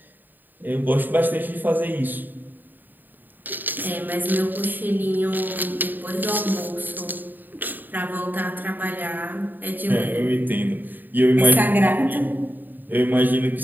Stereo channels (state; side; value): late; left; 0.089 ms